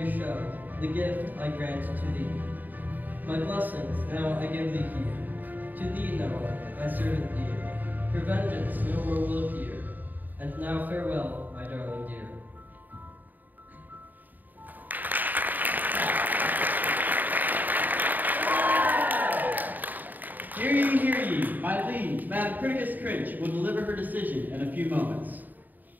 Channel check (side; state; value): left; late; 0.086 ms